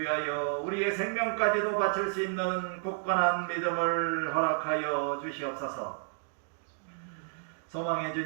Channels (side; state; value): left; silent; digital silence